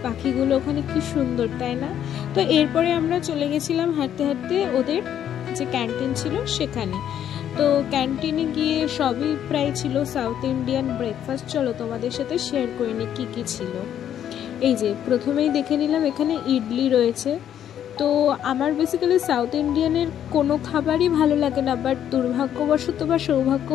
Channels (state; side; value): quieter; right; 10.1 dB